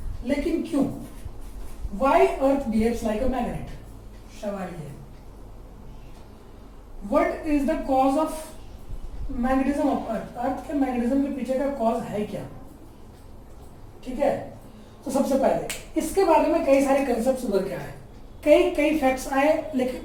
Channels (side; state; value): both; identical; correlation 1.00